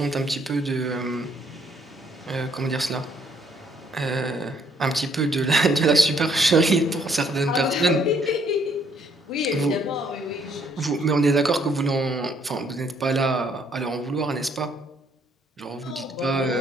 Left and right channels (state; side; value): normal; both; correlation 0.67